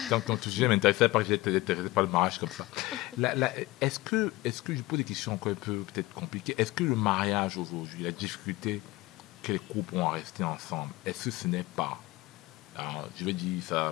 Tant que ton sujet m'intéressait pas que j'étais intéressé par le mariage comme ça. Est-ce que je pose des questions encore un peu peut-être compliquées? Est-ce que le mariage aujourd'hui, la difficulté que les couples ont à rester ensemble, est-ce que ce n'est pas, alors, je vais dire ça,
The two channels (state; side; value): quieter; right; 19.4 dB